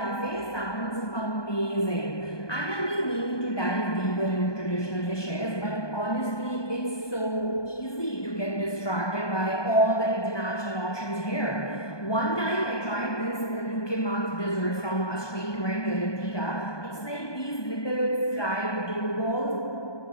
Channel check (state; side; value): late; right; 1.2 ms